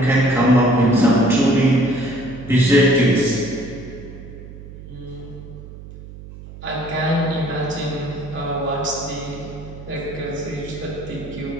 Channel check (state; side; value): noise; right; hum, 15 dB below the sound